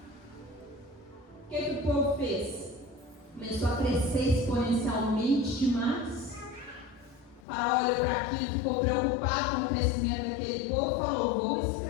O que o povo fez? Começou a crescer exponencialmente demais. Faraó olhou para aquilo, ficou preocupado com o crescimento daquele povo, falou: vou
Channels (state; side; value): drops out; right; at 7.4 s